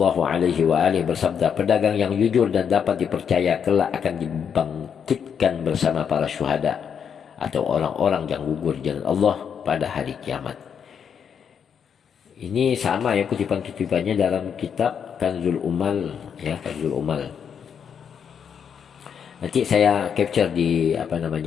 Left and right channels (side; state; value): right; quieter; 7.5 dB